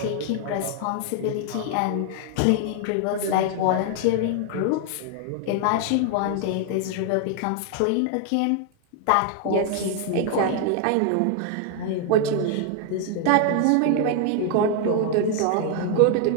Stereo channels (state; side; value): different; both; correlation 0.00